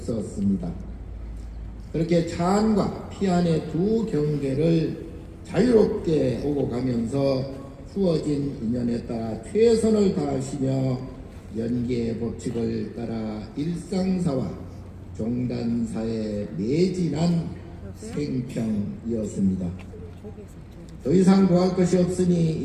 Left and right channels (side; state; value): both; identical; correlation 1.00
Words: 그렇게 자안과 피안의 두 경계를 자유롭게 오고 가면서 주어진 인연에 따라 최선을 다하시며 연계의 법칙을 따라 일상사와 종단사에 매진한 생평이었습니다. 더 이상 구할 것이 없으니